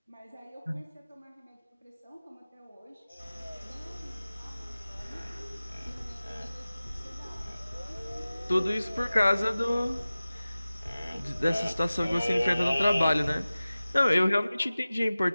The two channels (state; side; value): inverted; both; correlation -0.97